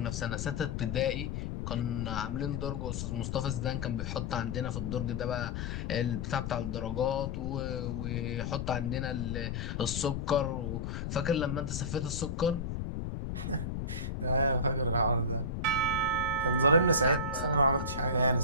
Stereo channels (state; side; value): noise; left; rumble, 3 dB below the sound